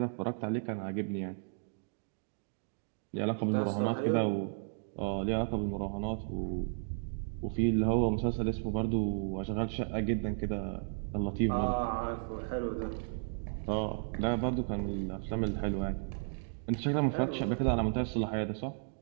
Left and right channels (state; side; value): silent; left; digital silence